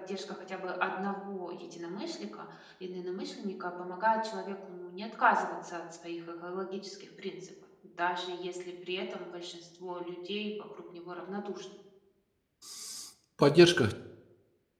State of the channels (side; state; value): both; identical; correlation 1.00